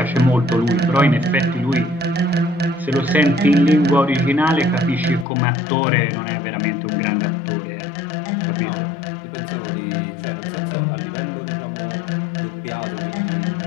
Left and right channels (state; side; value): drops out; right; at 5.2 s